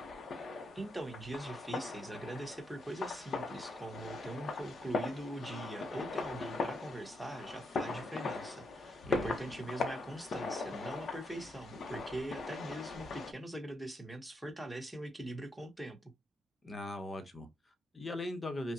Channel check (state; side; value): normal; both; correlation 0.80